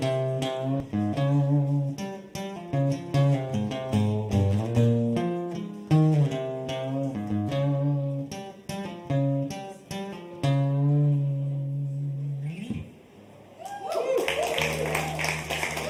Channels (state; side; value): identical; both; correlation 1.00